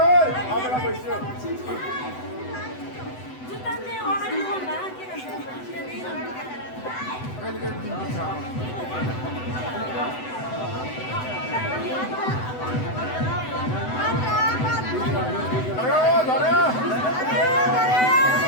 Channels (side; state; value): right; late; 7.9 ms